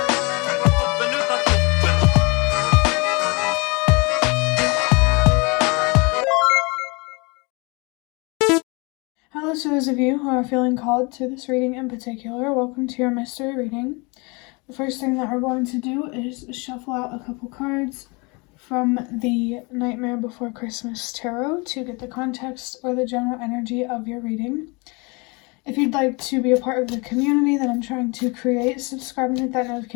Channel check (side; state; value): right; quieter; 28.6 dB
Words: Hello to those of you who are feeling called to this reading in particular. Welcome to your mystery reading. The first thing that we're going to do is shuffle out a couple cards from the Nightmare Before Christmas Tarot to get the context or the general energy of your reading. If you'd like to be a part of the community that I'm trying to create, subscribe and hit that